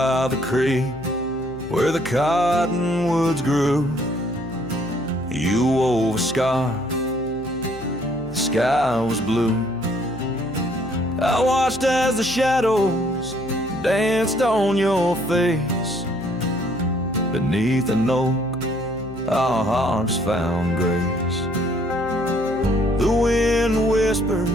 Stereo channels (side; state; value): left; noise; hum, 17 dB below the sound